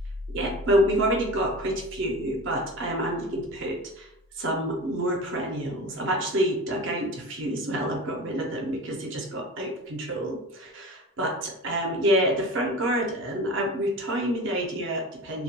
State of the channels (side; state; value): both; normal; correlation 0.33